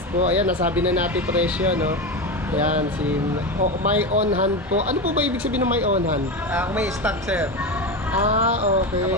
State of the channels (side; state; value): both; normal; correlation 0.19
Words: po. Ayan, nasabi na natin presyo, no? Ayan, may on hand po. Ano po ba ibig sabihin ng may on hand? Kung may stock sir.